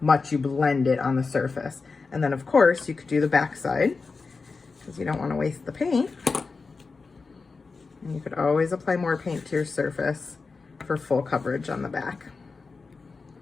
much you blend it on the surface. And then of course you could do the back side because you don't want to waste the paint. And you could always apply more paint to your surface for full coverage on the back.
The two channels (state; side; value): quieter; right; 4.4 dB